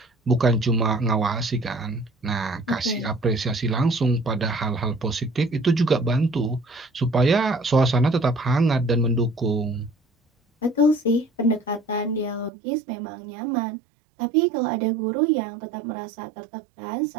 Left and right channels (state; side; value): drops out; left; at 12.5 s